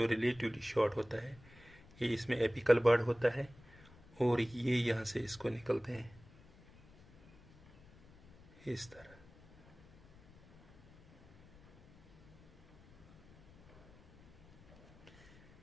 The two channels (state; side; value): noise; left; rumble, 24 dB below the sound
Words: रिलेटिवली शॉर्ट होता है। ये इसमें एपिकल बर्ड होता है और ये यहाँ से इसको निकलते हैं इस तरह।